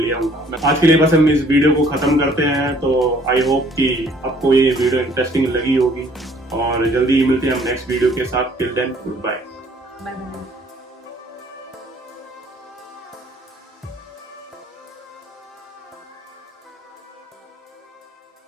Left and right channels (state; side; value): normal; both; correlation 0.59